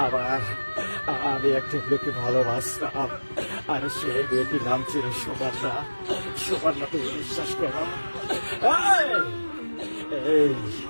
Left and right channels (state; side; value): inverted; both; correlation -1.00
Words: আমার আমি একটা মেয়েকে ভালোবাসতাম, আর সেই মেয়েটির নাম ছিল সুবর্ণা। সুবর্ণা তুমি বিশ্বাস করো, এই